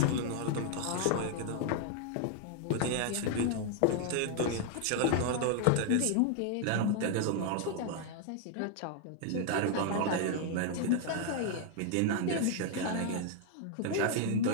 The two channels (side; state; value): both; different; correlation 0.00